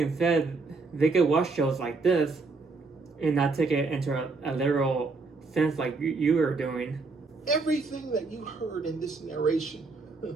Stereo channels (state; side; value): quieter; left; 4.0 dB